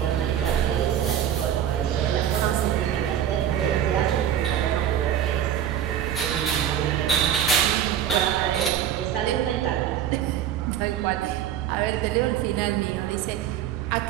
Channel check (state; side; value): quieter; left; 10.2 dB